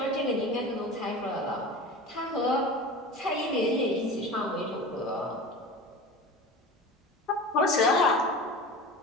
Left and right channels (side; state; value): both; normal; correlation 0.33